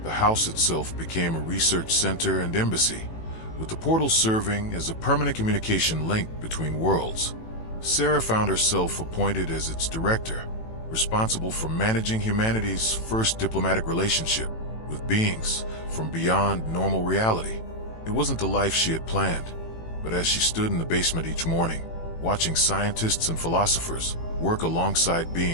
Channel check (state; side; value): late; right; 18 ms